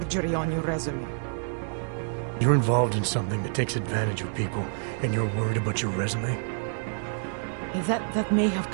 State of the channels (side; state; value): left; silent; 60 dB below the other